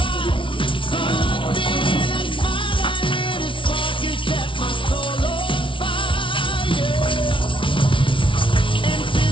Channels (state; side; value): late; right; 0.25 ms